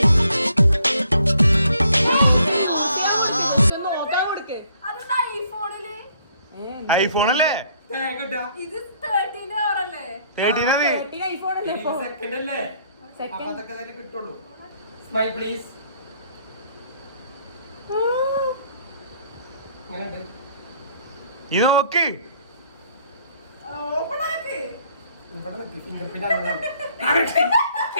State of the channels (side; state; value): both; inverted; correlation -0.65